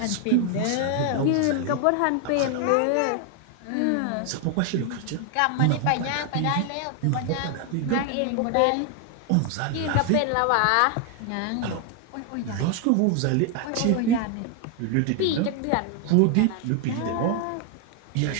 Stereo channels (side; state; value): both; different; correlation 0.01